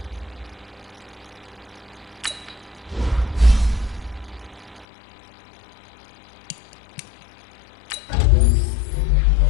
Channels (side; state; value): right; drops out; at 4.9 s